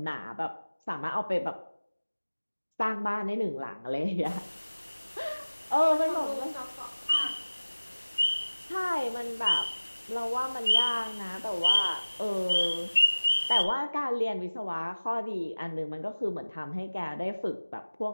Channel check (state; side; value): inverted; both; correlation -1.00